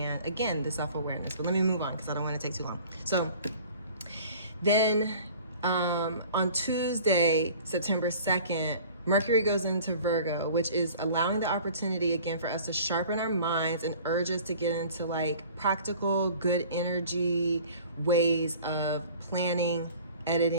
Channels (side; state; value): both; inverted; correlation -0.47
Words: again, the self-awareness. But let me move on because I don't want to take too long. So then on Tuesday, September 2nd, Mercury goes into Virgo, which is allowing the opportunity again for us to sharpen our minds and urge us to get into like practical, good energy ways of planning,